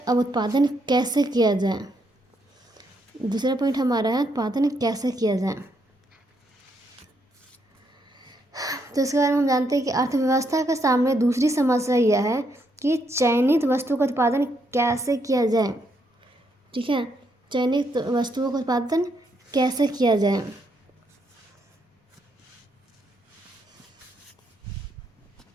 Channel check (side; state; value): both; normal; correlation 0.76